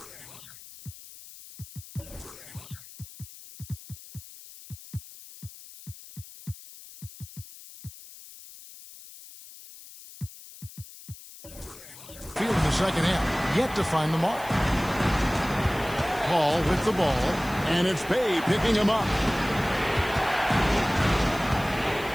field in the second half. Yet to find the mark. Hall with the ball. And it's Bey picking him up.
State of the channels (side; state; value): left; noise; hiss, 17 dB below the sound